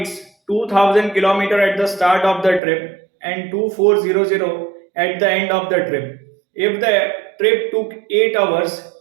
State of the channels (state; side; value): drops out; left; at 2.6 s